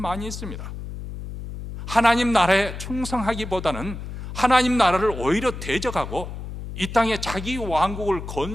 있습니다. 하나님 나라에 충성하기보다는 하나님 나라를 오히려 대적하고 이 땅에 자기 왕국을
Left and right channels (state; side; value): noise; left; hum, 9 dB below the sound